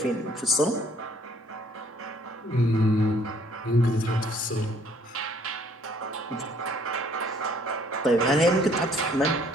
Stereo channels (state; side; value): normal; both; correlation 0.62